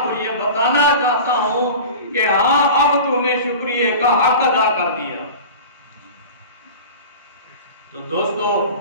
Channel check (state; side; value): inverted; both; correlation -0.35